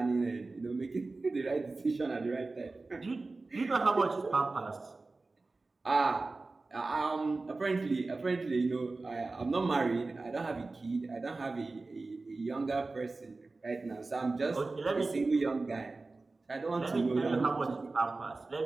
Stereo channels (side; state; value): left; quieter; 3.5 dB